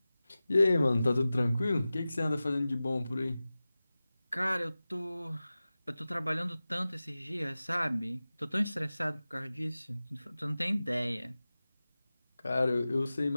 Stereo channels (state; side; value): inverted; both; correlation -0.96